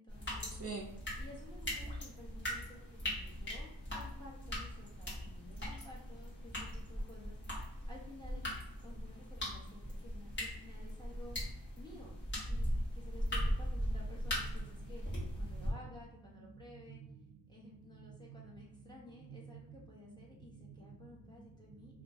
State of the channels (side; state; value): both; normal; correlation 0.66